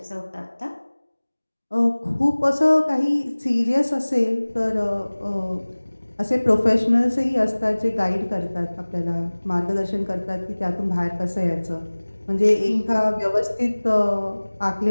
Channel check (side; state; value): both; inverted; correlation -1.00